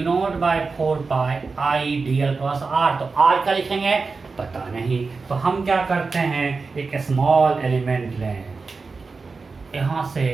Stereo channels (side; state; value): left; quieter; 4.3 dB